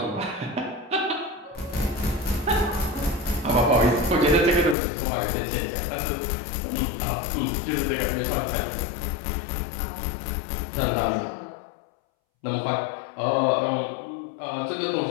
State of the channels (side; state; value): right; drops out; at 4.8 s